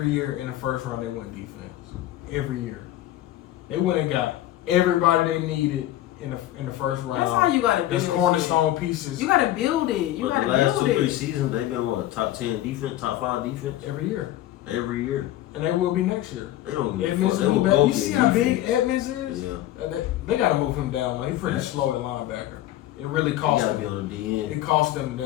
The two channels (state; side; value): quieter; right; 14.1 dB